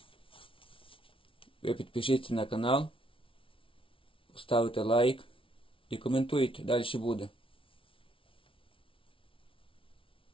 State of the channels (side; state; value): right; late; 0.25 ms